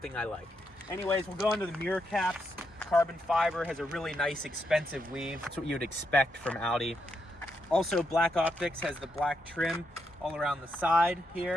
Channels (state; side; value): normal; both; correlation 0.81